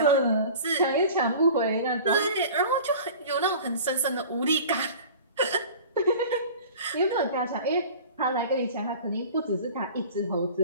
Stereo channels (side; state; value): both; inverted; correlation -0.41